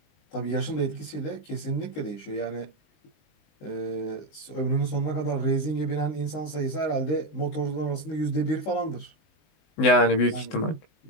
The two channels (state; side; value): late; right; 19 ms